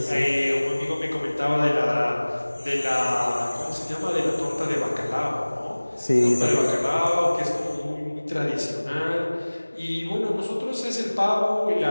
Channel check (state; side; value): inverted; both; correlation -1.00